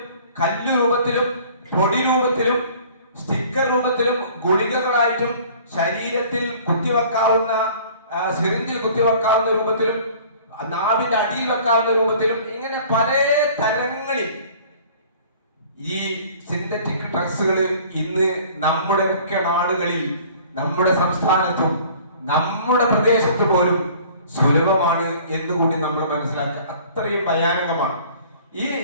കല്ല് രൂപത്തിലും പൊടി രൂപത്തിലും സ്റ്റിക്കർ രൂപത്തിലും ഗുളികകളായിട്ടും ശരീരത്തിൽ കുത്തിവെക്കാവുന്ന സിറിഞ്ചിൽ കുത്തിവെക്കാവുന്ന രൂപത്തിലും നാവിന്റെ അടിയിൽ വെക്കാവുന്ന രൂപത്തിലും ഇങ്ങനെ പല തരങ്ങളിൽ ഈ സിന്തറ്റിക് ഡ്രഗ്സുകൾ ഇന്ന് നമ്മുടെ ഒക്കെ നാടുകളിൽ, നമ്മുടെ സംസ്ഥാനത്തും നമ്മുടെ പ്രദേശത്ത് പോലും സുലഭമാണ് എന്നുകൂടി നമ്മൾ മനസ്സിലാക്കുക. അത്രയും ഭയാനകമാണ്.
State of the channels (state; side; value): inverted; both; correlation -0.50